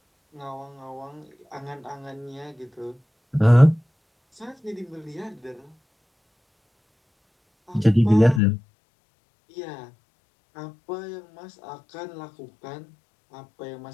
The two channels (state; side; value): drops out; right; at 8.4 s